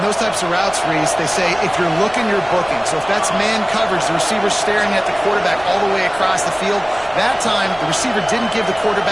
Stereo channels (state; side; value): noise; left; rumble, 24 dB below the sound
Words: those types of routes, Reese, they say if you're looking, you're booking. So if that's man coverage, the receiver's staring at the quarterback all the way across the field. That time, the receiver didn't give the